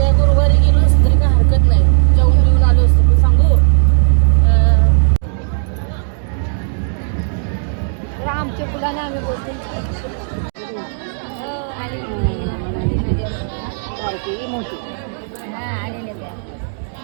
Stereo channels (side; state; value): left; silent; digital silence